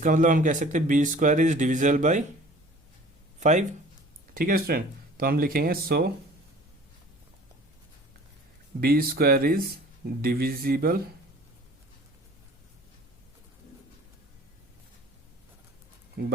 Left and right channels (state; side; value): normal; both; correlation 0.48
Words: मतलब हम कह सकते हैं b square is divisible by 5। ठीक है स्टूडेंट, तो हम लिखेंगे सो b square is divisible